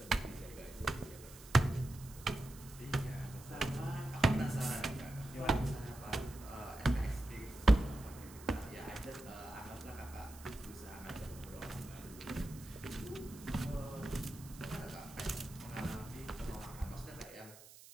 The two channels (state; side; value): noise; right; hiss, 18 dB below the sound